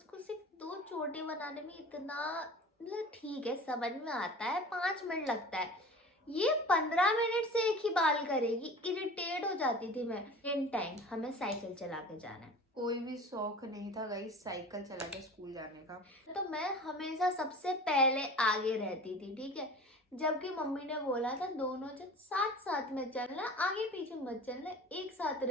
सिर्फ 2 चोटी बनाने में इतना मतलब ठीक है समझ में आता है, 5 मिनट लगता है, ये 15 मिनट से एक ही बाल करेगी। इरिटेट हो जाती थी मैं। इन टाइम हमें साइकिल चला के जाना है, कोई भी शौक नहीं था गाइस साइकिल चला के स्कूल जाने का, तो मैं हमेशा सबसे पहले आगे रहती थी, ठीक है। जबकि मम्मी ने बोला था दोनों जन साथ साथ में चलना, आगे पीछे मत चलना, एक साथ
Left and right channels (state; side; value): normal; both; correlation 0.39